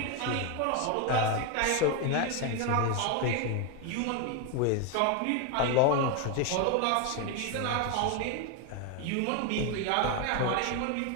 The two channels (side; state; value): both; different; correlation 0.01